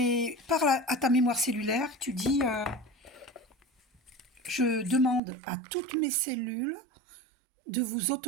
à ta mémoire cellulaire, tu dis je demande à toutes mes cellules de vous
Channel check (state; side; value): drops out; left; at 5.2 s